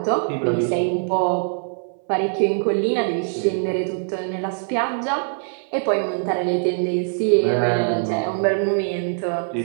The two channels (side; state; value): left; silent; 64 dB below the other